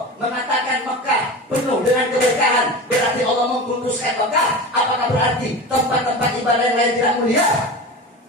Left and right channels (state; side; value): normal; both; correlation 0.29